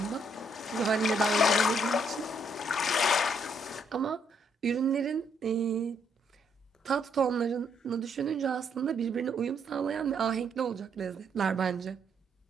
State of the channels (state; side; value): normal; both; correlation 0.72